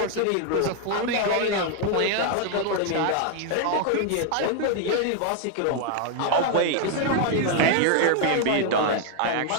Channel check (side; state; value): both; different; correlation 0.00